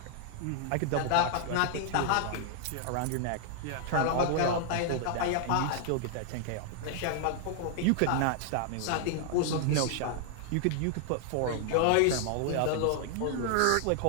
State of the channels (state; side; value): different; both; correlation 0.00